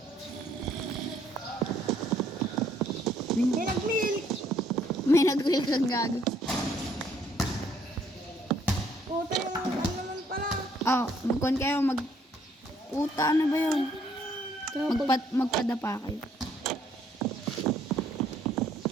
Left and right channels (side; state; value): both; normal; correlation 0.66